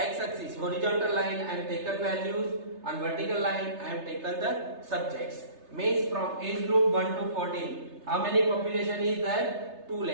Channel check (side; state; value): left; late; 3.3 ms